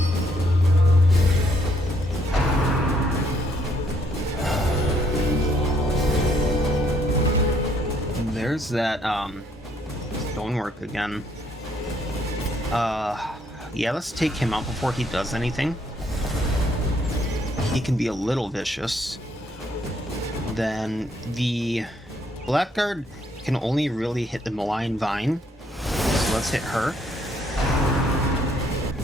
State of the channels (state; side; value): normal; both; correlation 0.69